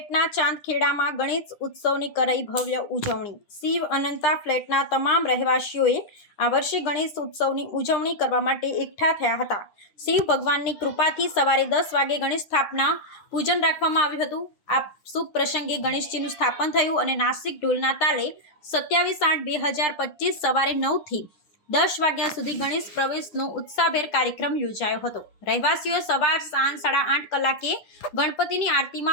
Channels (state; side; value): late; right; 9.9 ms